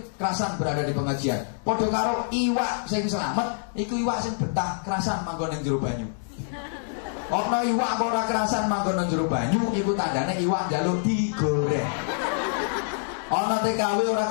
kerasan berada di pengajian. Padha karo iwak sing selamat, iku iwak sing betah kerasan manggon ning jero banyu. Ana iwak kok ora kerasan manggon ning jero banyu, iku tandane iwak njaluk digoreng. Ana TKW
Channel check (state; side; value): silent; right; digital silence